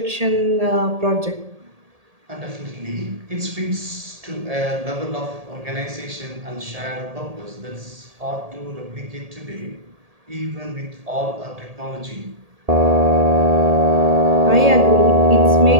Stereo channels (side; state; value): left; late; 1.8 ms